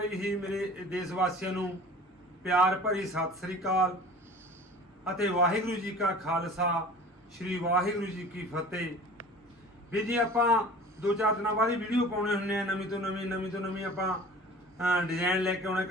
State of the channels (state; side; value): normal; both; correlation 0.42